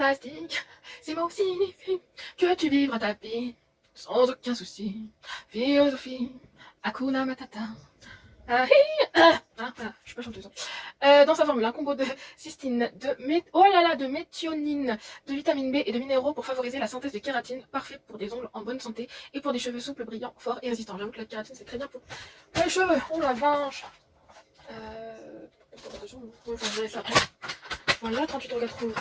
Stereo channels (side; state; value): both; identical; correlation 1.00